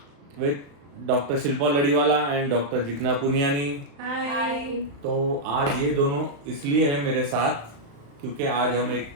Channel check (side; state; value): left; late; 35 ms